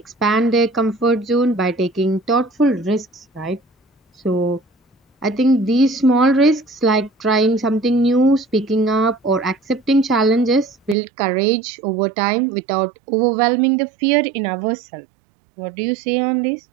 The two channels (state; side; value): drops out; left; at 11.0 s